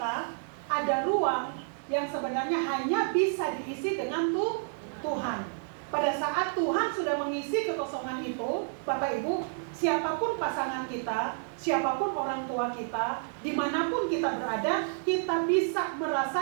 ada ruang yang sebenarnya hanya bisa diisi dengan Tuhan. Pada saat Tuhan sudah mengisi kekosongan itu, Bapak Ibu, siapapun pasangan kita, siapapun orang tua kita, dimanapun kita berada, kita bisa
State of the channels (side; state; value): left; silent; digital silence